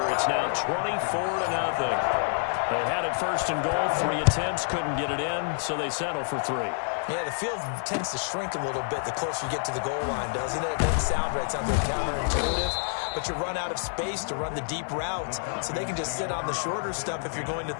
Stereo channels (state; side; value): silent; right; digital silence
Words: It's now 24-0. They had it 1st and goal. 3 attempts, couldn't get it in, so they settle for 3. Yeah, the field tends to shrink a little bit the closer you get to the goal line, doesn't it? It doesn't sound right. It sounds like counterintuitive. But you run out of space to run the deep routes, so they can just sit on the shorter stuff if you're going to